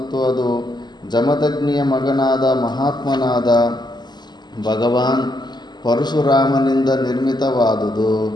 ಅದು ಜಮದಗ್ನಿಯ ಮಗನಾದ ಮಹಾತ್ಮನಾದ ಭಗವಾನ್ ಪರಶುರಾಮನಿಂದ ನಿರ್ಮಿತವಾದುದು.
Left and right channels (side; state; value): right; late; 0.21 ms